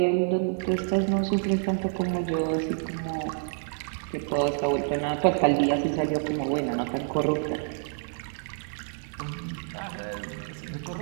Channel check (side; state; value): left; silent; 59 dB below the other